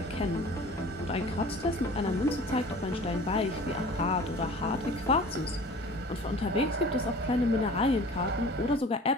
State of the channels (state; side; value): normal; both; correlation 0.44